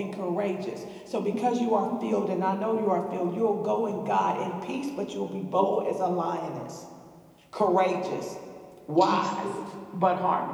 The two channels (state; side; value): identical; both; correlation 1.00